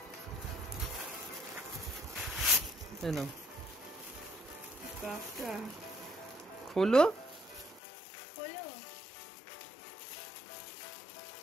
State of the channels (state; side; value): drops out; right; at 7.8 s